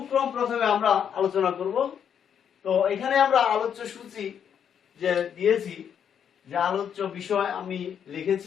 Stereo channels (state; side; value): quieter; right; 8.3 dB